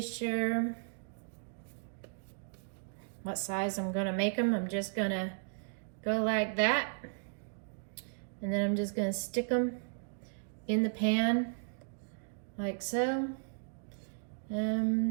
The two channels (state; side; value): silent; left; digital silence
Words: sure what size I'm gonna make them. I'm just gonna go like that, and then I'm just gonna stick them in the pan like so.